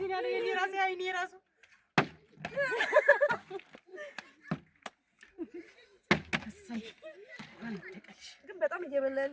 ያለው የኔ ራሴ አይኔ ራሱ እሰይ ግን በጣም እየበላ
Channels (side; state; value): both; identical; correlation 1.00